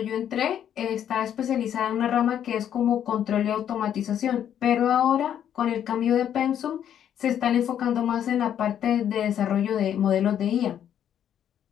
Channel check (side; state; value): right; quieter; 9.8 dB